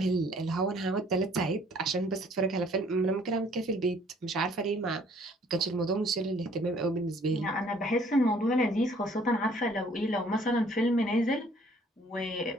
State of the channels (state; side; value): normal; both; correlation 0.59